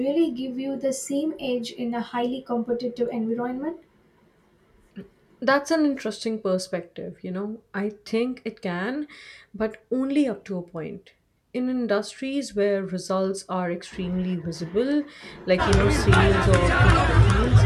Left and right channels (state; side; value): identical; both; correlation 1.00